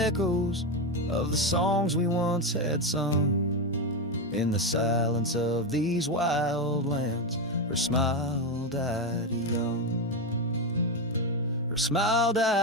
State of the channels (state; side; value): normal; both; correlation 0.11